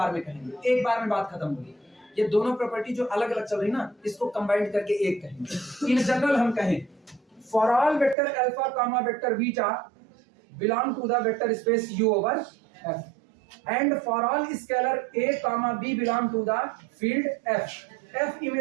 में कहेंगे, एक बार में बात खत्म होगी। ये दोनों प्रॉपर्टी जो अलग अलग चल रही ना, इसको कंबाइंड करके एक कहेंगे। इन जनरल हम कहें for all vector alpha comma vector beta belong to the vector space U over F, and for all scalar a comma b belong to the field F. F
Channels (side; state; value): left; drops out; at 8.2 s